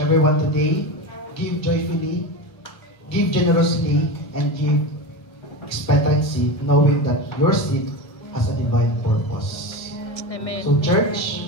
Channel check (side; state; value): right; late; 1.5 ms